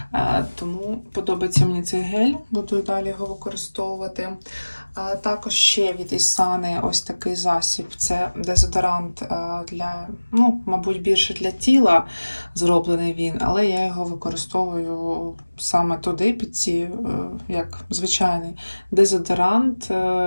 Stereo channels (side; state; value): both; inverted; correlation -1.00